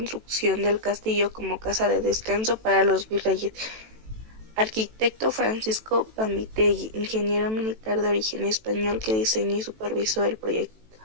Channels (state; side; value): late; left; 18 ms